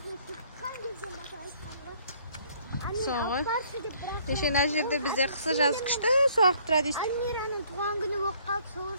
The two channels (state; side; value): inverted; both; correlation -0.61